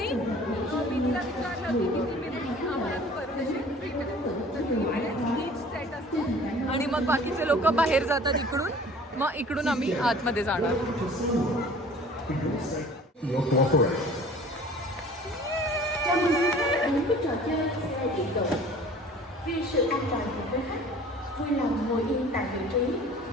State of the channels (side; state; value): both; normal; correlation 0.47